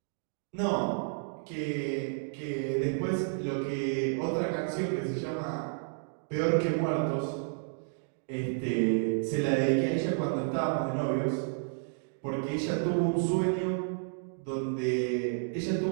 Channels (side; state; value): left; silent; digital silence